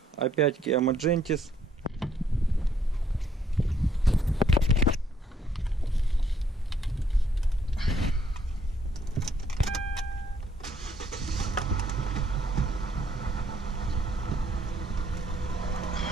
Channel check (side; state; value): both; normal; correlation 0.68